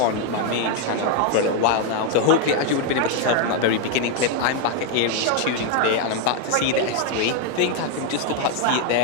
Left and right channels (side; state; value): both; different; correlation 0.01